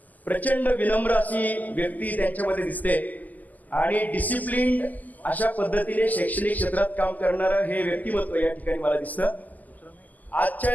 प्रचंड विनम्र अशी व्यक्ती त्यांच्यामध्ये दिसते आणि डिसिप्लिन अशा पद्धतीने शैक्षणिक क्षेत्रात काम करणारं हे व्यक्तिमत्व या ठिकाणी मला दिसतं. आजच्या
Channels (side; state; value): right; late; 0.081 ms